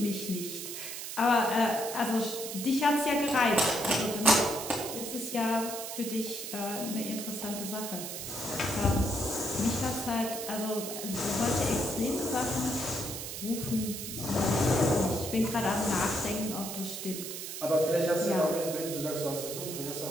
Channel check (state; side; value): noise; right; hiss, 7 dB below the sound